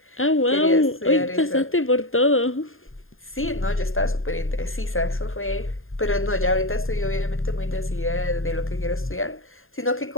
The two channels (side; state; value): right; late; 0.60 ms